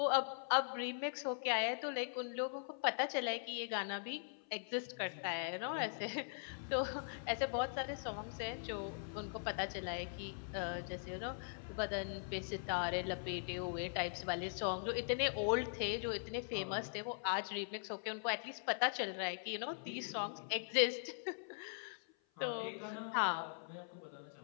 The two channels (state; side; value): silent; right; 50 dB below the other